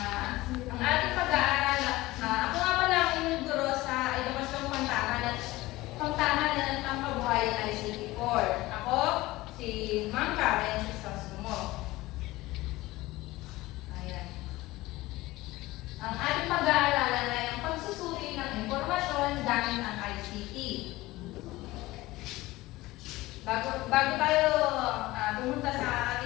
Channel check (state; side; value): quieter; right; 18.8 dB